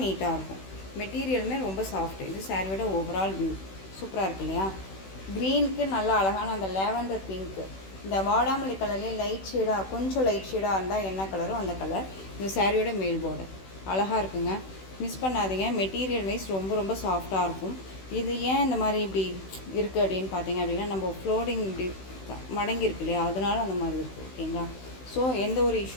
நீட்டாக இருக்கும். மெட்டீரியலுமே ரொம்ப சாஃப்ட். இது சாரியோட ஓவரால் வியூ சூப்பராக இருக்குது இல்லையா? க்ரீனுக்கு நல்லா அழகான அந்த லேவண்டர் பிங்க்கு, இந்த வாடாமல்லி கலர்லேயே லைட் ஷேடாக, கொஞ்சம் லைட் ஷேடாக இருந்தால் என்ன கலரோ அந்த கலர். இந்த சாரியோட மேல் பார்டர் அழகாக இருக்குங்க, மிஸ் பண்ணாதீங்க. மெட்டீரியல் வைஸ் ரொம்ப ரொம்ப சாஃப்டாக இருக்கும். இது ஏன் இந்த மாதிரி இப்படி இருக்குது அப்படின்னு பார்த்தீங்க அப்படின்னா நம்ம ஃப்ளோரிங் இப்படி மடங்கி இருக்கு இல்லையா, அதனால அந்த மாதிரி இருக்குது. ஓகேங்களா, ஸோ எந்த ஒரு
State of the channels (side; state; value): right; late; 16 ms